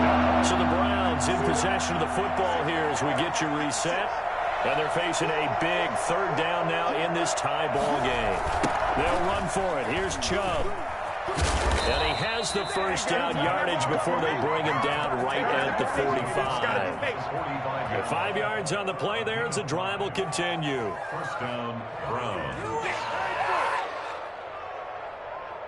3. So the Browns in possession of the football here as we get you reset. And they're facing a big 3rd down now in this tie ball game. They'll run for it. Here's Chubb. And he has the first down yardage before they bring him down right at the 45. 5 yards on the play there as the drive will continue. First down, Browns.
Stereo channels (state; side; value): identical; both; correlation 1.00